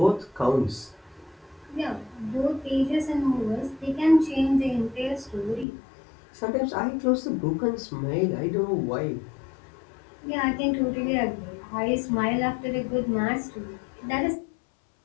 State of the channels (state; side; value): drops out; right; at 5.7 s